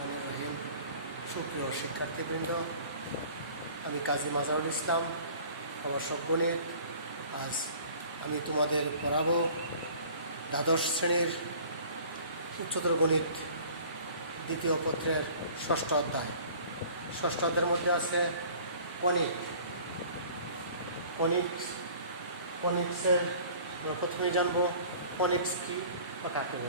রহিম। সুপ্রিয় শিক্ষার্থীবৃন্দ, আমি কাজী মাজারুল ইসলাম, প্রভাষক গণিত। আজ আমি তোমাদের পড়াবো দ্বাদশ শ্রেণীর উচ্চতর গণিত দ্বিতীয় পত্রের ষষ্ঠ অধ্যায়। ষষ্ঠ অধ্যায়ের মধ্যে আছে কনিক্সের প্রথমেই জানবো কনিক্স কি বা কাকে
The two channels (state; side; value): inverted; both; correlation -0.48